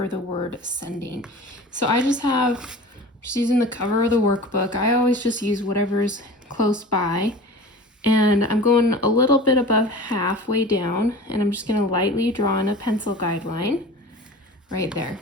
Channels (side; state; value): both; normal; correlation 0.38